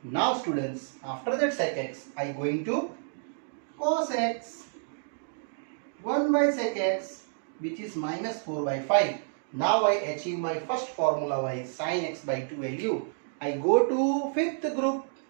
Now students, after that sec x, I going to cos x. 1 by sec x, which is minus 4 by 5. Now I achieve my first formula by sin x by 2 value. I go to fifth group.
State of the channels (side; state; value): left; silent; digital silence